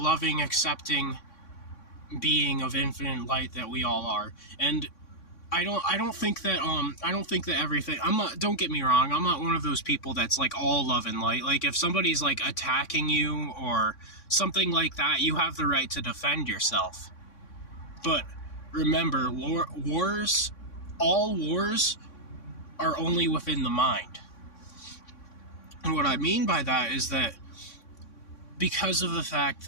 accepting being of infinite light that we all are. And I don't think that everything, don't get me wrong, I'm not one of those people that's like all love and light. Like if somebody's like attacking you or something like that, you have the right to defend yourself. But remember, all wars are only within the mind. And what I mean by that is that because of the fact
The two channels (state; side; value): late; right; 3.6 ms